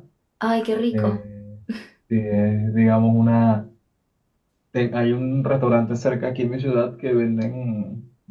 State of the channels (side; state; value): both; identical; correlation 1.00